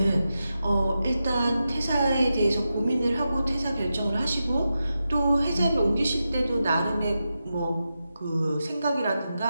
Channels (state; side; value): inverted; both; correlation -0.90